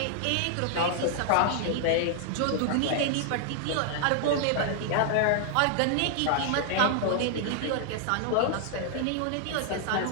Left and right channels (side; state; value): both; different; correlation 0.00